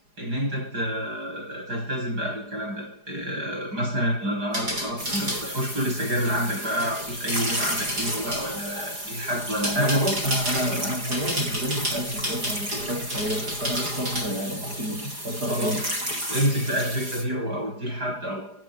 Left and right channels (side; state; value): left; late; 4.9 ms